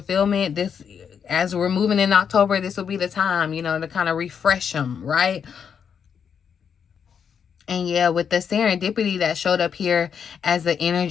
this, as we're moving in October, this will be the time, you know, to kind of refresh them, right? And yeah, with the serendipity that showed up here as the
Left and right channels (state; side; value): quieter; right; 7.2 dB